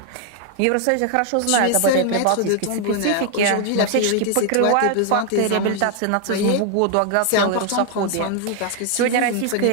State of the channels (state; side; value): different; both; correlation 0.00